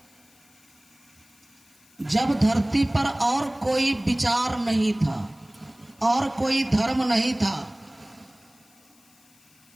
जब धरती पर और कोई विचार नहीं था और कोई धर्म नहीं था,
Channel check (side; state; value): left; noise; hiss, 30 dB below the sound